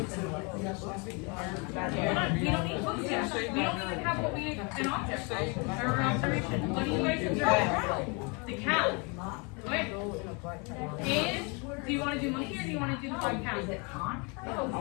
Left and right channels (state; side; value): quieter; right; 32.0 dB